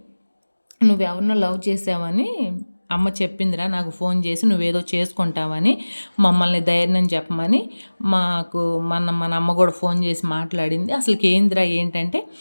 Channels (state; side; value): inverted; both; correlation -1.00